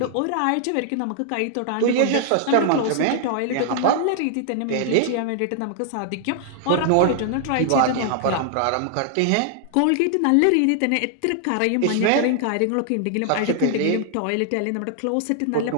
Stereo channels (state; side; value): different; both; correlation 0.00